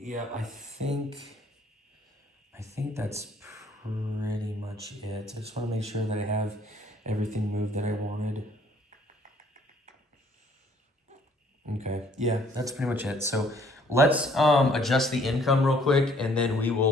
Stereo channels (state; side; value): normal; both; correlation 0.61